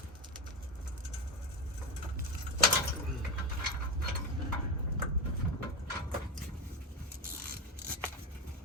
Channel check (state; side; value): normal; both; correlation 0.16